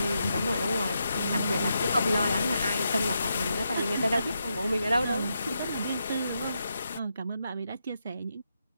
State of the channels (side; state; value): both; inverted; correlation -0.84